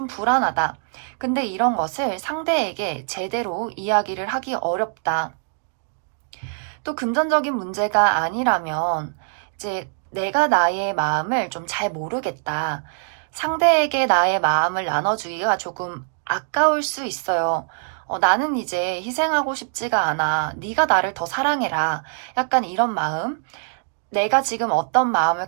불안하다. 근데 이런 것을 상대에게 제대로 이야기를 하기 어렵다. 또 금전적인 문제가 아니라면 이제 내가 나의 마음을 좀 잘 모르겠다. 상대에게 나의 마음을 나눠주기가 조금 아까울 수 있어요. 나는 이제 희생하고 싶지가 않아. 네가 나를 더 사랑해라. 약간 이런 마음. 내가 지금 어떤 마음을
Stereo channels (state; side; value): silent; left; digital silence